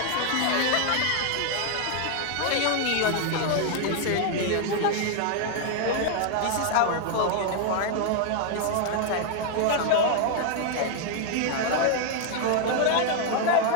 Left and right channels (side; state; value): both; different; correlation 0.00